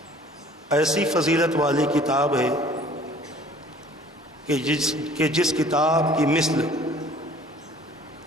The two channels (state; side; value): normal; both; correlation 0.52